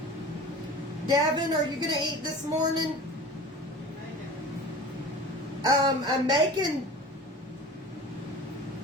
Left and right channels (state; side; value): normal; both; correlation 0.38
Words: Davin, are you going to eat this morning? I'm making